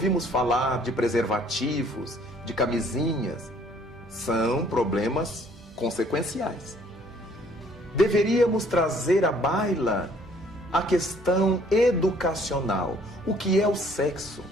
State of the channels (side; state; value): both; normal; correlation 0.60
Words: falar de preservativos, de camisinhas, são problemas consequenciais. Deveríamos trazer à baila a questão educacional. O que é o sexo?